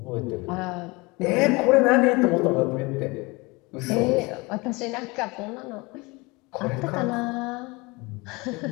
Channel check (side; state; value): right; quieter; 25.2 dB